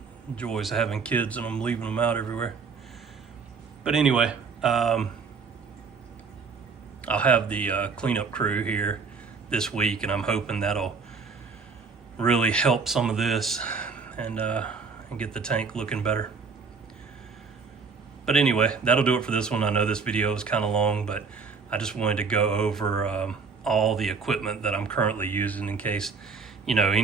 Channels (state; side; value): quieter; left; 5.0 dB